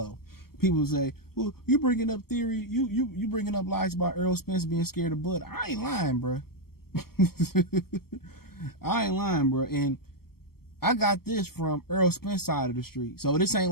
People say, well, you bringing up theory. You bringing up lies about Errol Spence being scared of blood. I ain't lying, bro. I ain't lying, bro. And I got this from Errol Spence side of the street. So this ain't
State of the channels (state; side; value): late; right; 0.95 ms